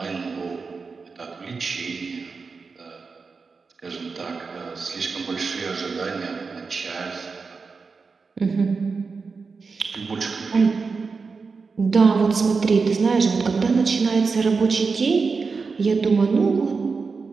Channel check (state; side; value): quieter; left; 4.7 dB